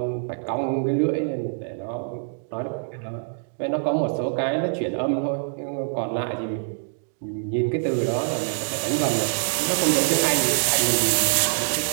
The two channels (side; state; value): left; silent; digital silence